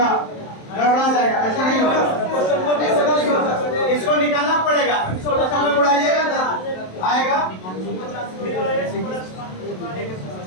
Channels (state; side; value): late; right; 27 ms